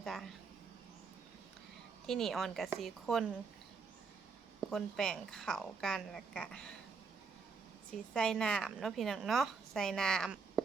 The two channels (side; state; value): left; quieter; 5.0 dB